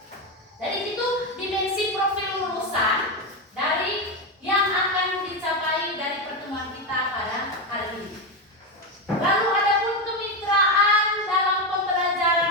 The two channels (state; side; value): normal; both; correlation 0.11